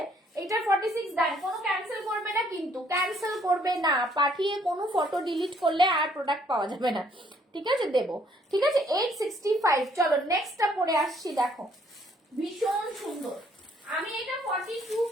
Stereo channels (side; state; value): both; normal; correlation 0.65